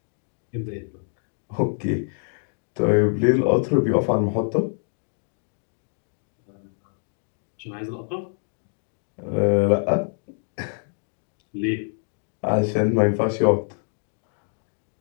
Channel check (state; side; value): silent; right; 56 dB below the other